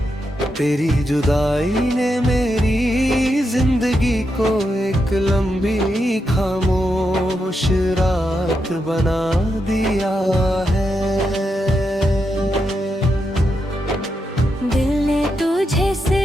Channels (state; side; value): normal; both; correlation 0.84